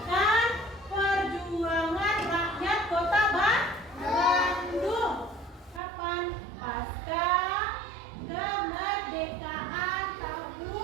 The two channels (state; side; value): drops out; left; at 5.8 s